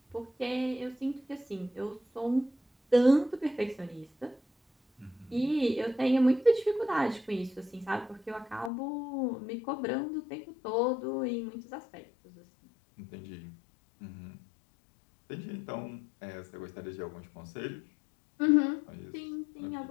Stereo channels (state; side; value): drops out; right; at 8.7 s